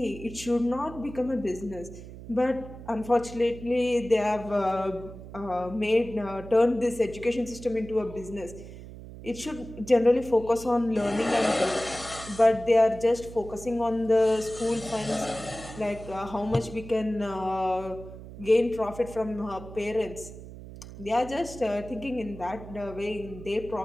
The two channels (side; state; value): right; noise; hum, 14 dB below the sound